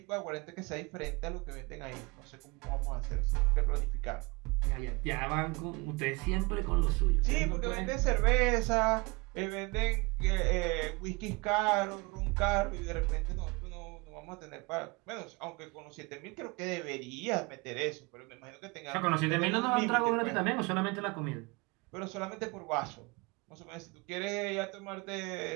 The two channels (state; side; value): quieter; left; 26.5 dB